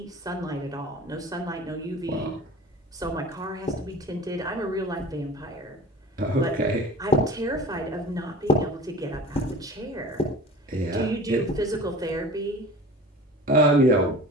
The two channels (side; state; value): both; normal; correlation 0.40